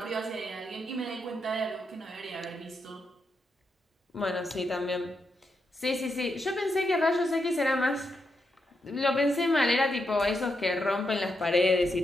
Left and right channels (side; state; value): both; normal; correlation 0.83